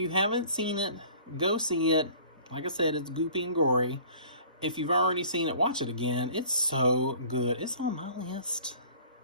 haven't seen it, go see it. Like I said, it's goopy and gory. If you've already seen it, watch it again. It's so good. It's on my list.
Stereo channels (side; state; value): both; inverted; correlation -0.49